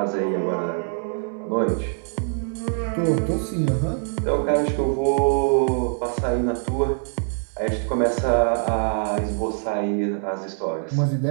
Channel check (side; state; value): left; silent; 60 dB below the other